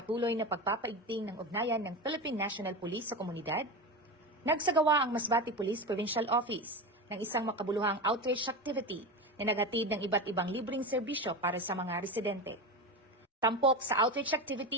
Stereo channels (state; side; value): normal; both; correlation 0.22